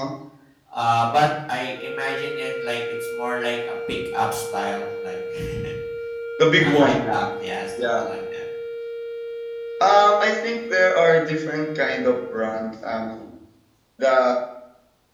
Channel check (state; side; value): identical; both; correlation 1.00